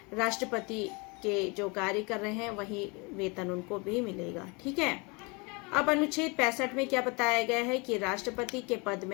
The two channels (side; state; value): right; quieter; 29.3 dB